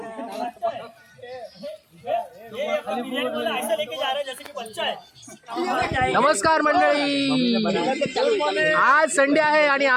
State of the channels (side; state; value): both; identical; correlation 1.00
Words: ऐसा लेके जा रहे हैं जैसे कि बच्चा है। नमस्कार मंडळी, आज संडे आहे आणि